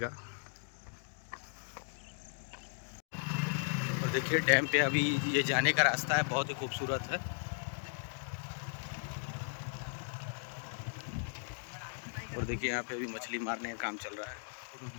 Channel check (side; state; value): right; silent; digital silence